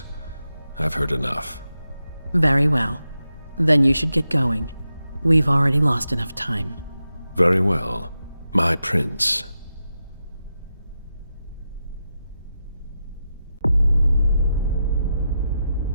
I've heard enough. Very well. Then you should get going. We've already lost enough time. Very well. My prince.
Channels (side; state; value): both; inverted; correlation -0.89